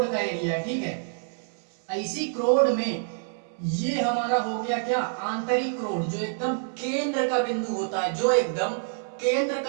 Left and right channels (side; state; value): left; silent; digital silence